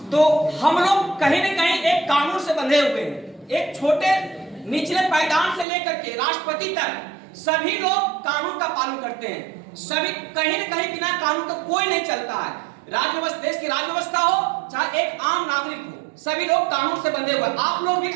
तो हम लोग कहीं न कहीं एक कानून से बंधे हुए हैं। एक छोटे निचले पायदान से लेकर के राष्ट्रपति तक सभी लोग कानून का पालन करते हैं। सभी कहीं न कहीं बिना कानून का कोई नहीं चलता है। राज्य देश की राज्य व्यवस्था हो चाहे एक आम नागरिक हो, सभी लोग कानून से बंधे हुए। आप लोग भी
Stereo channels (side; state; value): left; drops out; at 5.7 s